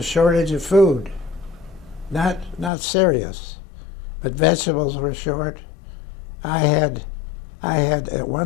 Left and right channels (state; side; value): drops out; right; at 2.7 s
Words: a shortage of food. Not serious, but vegetables were short. I had at